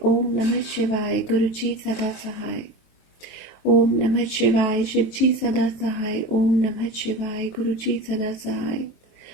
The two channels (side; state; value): right; late; 23 ms